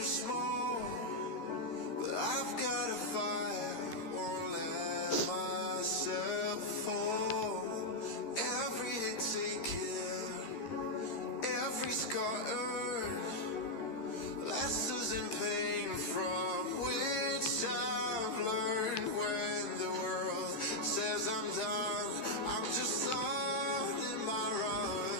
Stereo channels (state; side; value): late; right; 13 ms